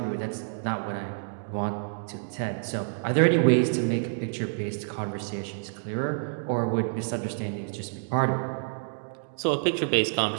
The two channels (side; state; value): left; silent; digital silence